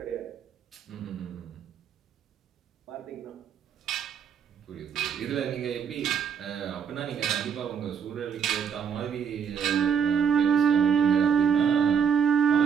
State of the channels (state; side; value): quieter; left; 7.3 dB